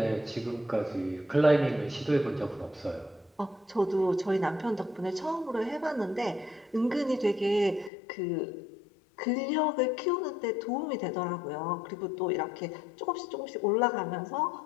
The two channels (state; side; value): drops out; right; at 7.9 s